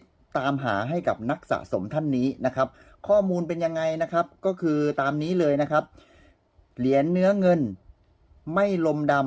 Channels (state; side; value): identical; both; correlation 1.00